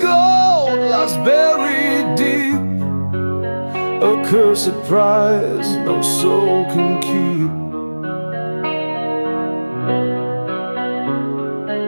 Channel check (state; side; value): inverted; both; correlation -1.00